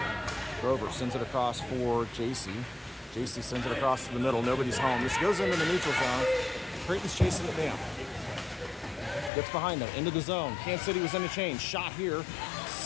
Grover sends it across for JC. JC sends it across to the middle. Nobody's home. This goes into the neutral zone. Creighton's chasing it down. Gets behind them, into the zone. Kansas City was in a change. Shot here.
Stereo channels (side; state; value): right; drops out; at 9.3 s